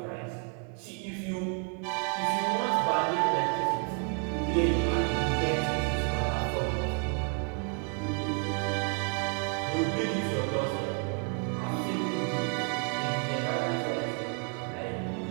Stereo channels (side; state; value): left; quieter; 38.5 dB